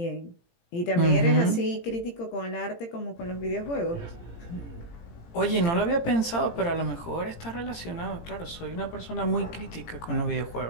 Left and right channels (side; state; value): right; late; 18 ms